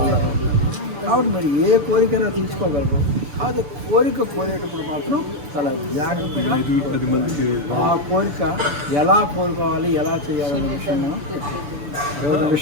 కాబట్టి మరి ఏ కోరికైనా తీసుకోగలరు. కాదు కోరేటప్పుడు మాత్రం చాలా జాగ్రత్తగా ఆ కోరిక ఎలా కోరుకోవాలి, ఎలా చేయాలనే విషయం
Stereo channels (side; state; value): left; late; 6.9 ms